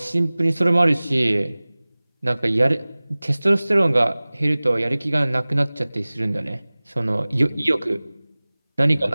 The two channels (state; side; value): inverted; both; correlation -0.99